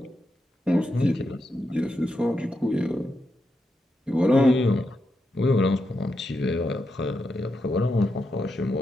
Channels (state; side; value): normal; both; correlation 0.85